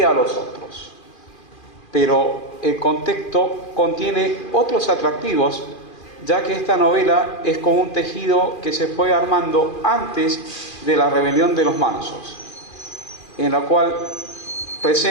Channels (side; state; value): right; late; 2.4 ms